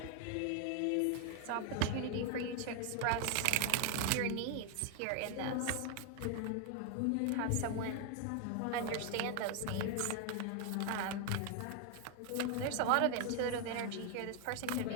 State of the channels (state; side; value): different; both; correlation 0.01